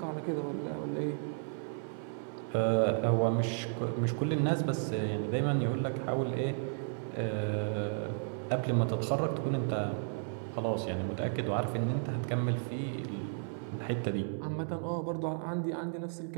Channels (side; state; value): left; silent; 55 dB below the other